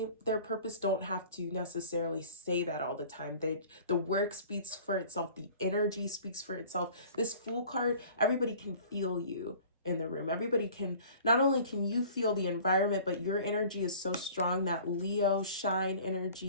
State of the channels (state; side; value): inverted; both; correlation -0.47